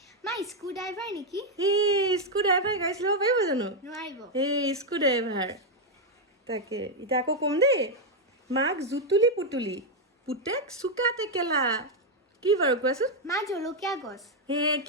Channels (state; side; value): normal; both; correlation 0.02